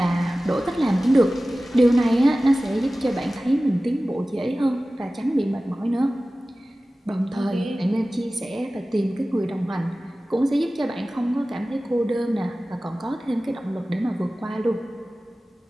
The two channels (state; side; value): normal; both; correlation 0.96